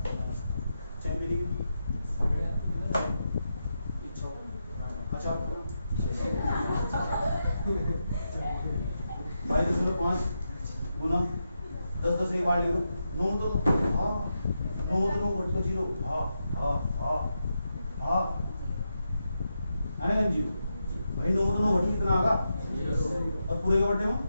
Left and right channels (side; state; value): both; inverted; correlation -0.86